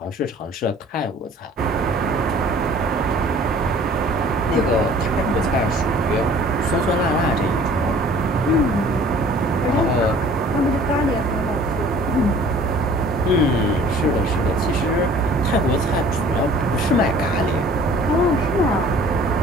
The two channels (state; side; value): normal; both; correlation 0.51